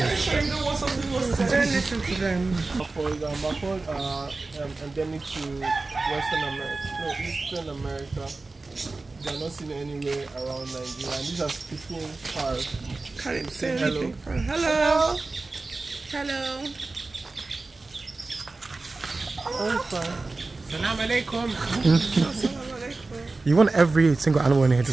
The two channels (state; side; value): quieter; left; 3.5 dB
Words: Don't listen to them. Macaws are endemic to Western America, no, Eastern America. They are not seen anywhere around Nigeria. And these are speaking parrots. Can't say hello. Hello. Hello. I'm fine. Salam alaikum. You want every single animal in here to